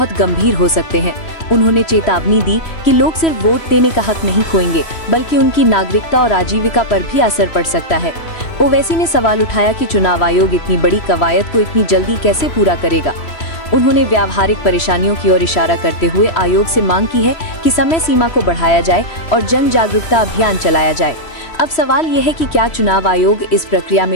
गंभीर हो सकते हैं। उन्होंने चेतावनी दी कि लोग सिर्फ वोट देने का हक नहीं खोएंगे, बल्कि उनकी नागरिकता और आजीविका पर भी असर पड़ सकता है। ओवैसी ने सवाल उठाया कि चुनाव आयोग इतनी बड़ी कवायद को इतनी जल्दी कैसे पूरा करेगा। उन्होंने व्यावहारिक परेशानियों की ओर इशारा करते हुए आयोग से मांग की है कि समय सीमा को बढ़ाया जाए और जन जागरूकता अभियान चलाया जाए। अब सवाल ये है कि क्या चुनाव आयोग इस प्रक्रिया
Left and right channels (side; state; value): right; late; 3.1 ms